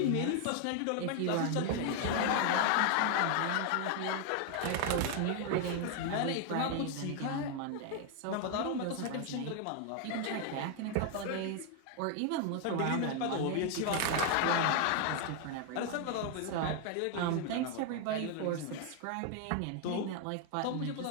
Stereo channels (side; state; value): both; different; correlation 0.00